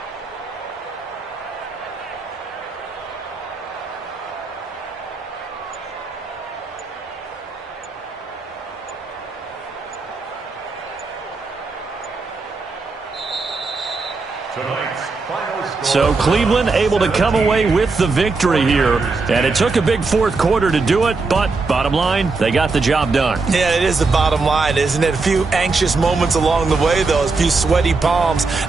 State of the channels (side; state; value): left; quieter; 4.0 dB